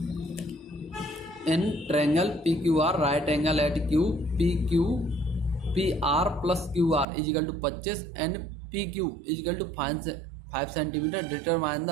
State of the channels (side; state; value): left; drops out; at 7.1 s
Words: in triangle PQR right angle at Q, PR plus QR equal to 25 and PQ equal to 5 centimetre. Determine the